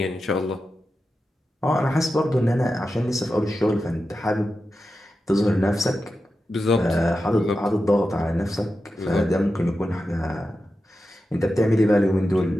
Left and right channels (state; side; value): normal; both; correlation 0.91